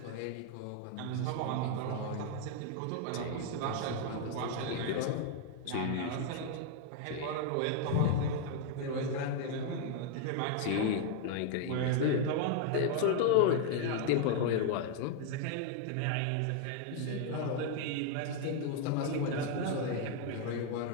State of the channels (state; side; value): different; both; correlation 0.00